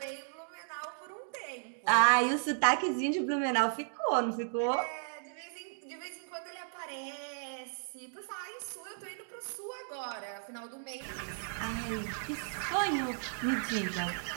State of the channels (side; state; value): left; silent; digital silence